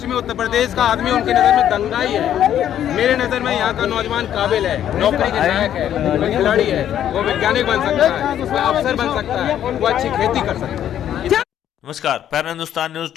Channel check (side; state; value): right; quieter; 10.6 dB